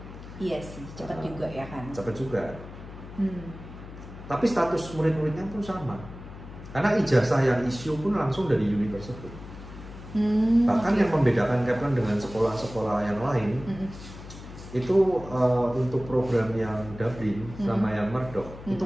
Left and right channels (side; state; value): left; noise; hum, 14 dB below the sound